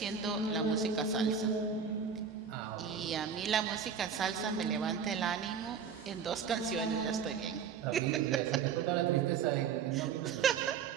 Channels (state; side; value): quieter; left; 6.8 dB